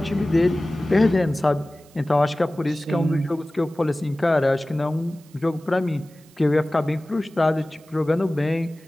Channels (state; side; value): noise; right; hiss, 29 dB below the sound